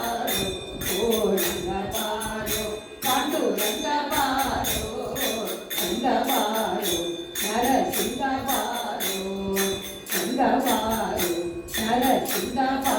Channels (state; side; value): identical; both; correlation 1.00